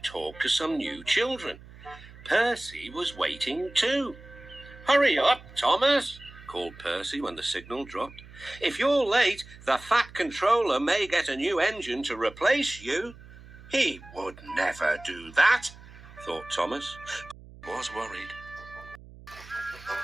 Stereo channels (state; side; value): noise; right; hum, 19 dB below the sound